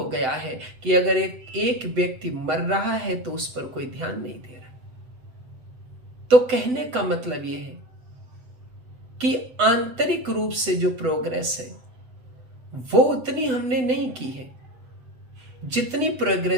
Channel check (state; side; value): late; left; 7.9 ms